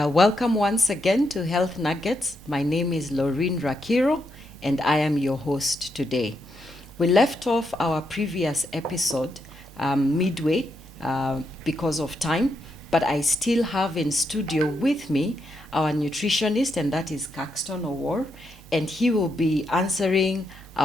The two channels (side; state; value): both; normal; correlation 0.81